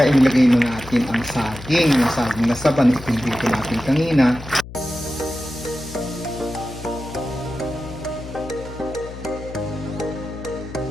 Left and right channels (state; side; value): noise; left; hum, 13 dB below the sound